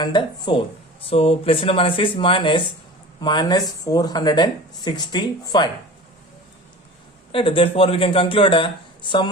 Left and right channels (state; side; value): normal; both; correlation 0.37